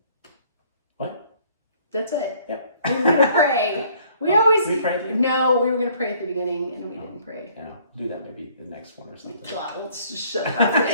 What? That's it. Yep. We were going to pray. We prayed? No, we were going to pray at the beginning and we didn't pray. Do that maybe the next one or something. Well, let's just shut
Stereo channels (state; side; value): inverted; both; correlation -0.59